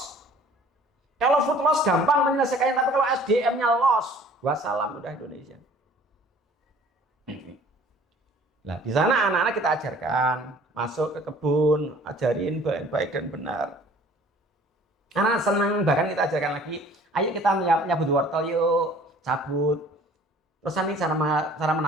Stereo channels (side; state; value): both; normal; correlation 0.51